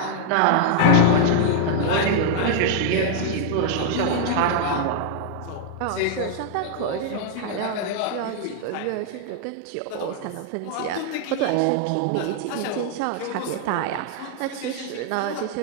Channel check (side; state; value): both; different; correlation 0.00